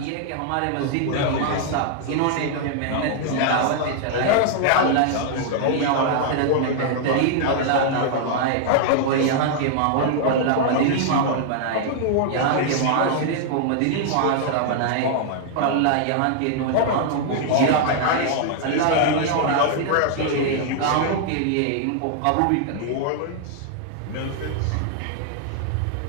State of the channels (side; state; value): both; different; correlation -0.01